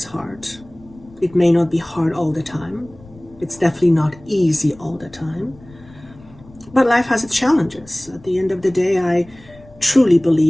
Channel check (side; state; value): left; noise; rumble, 23 dB below the sound